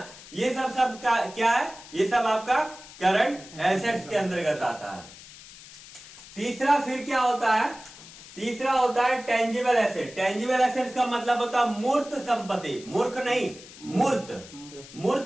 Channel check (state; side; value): noise; left; hiss, 18 dB below the sound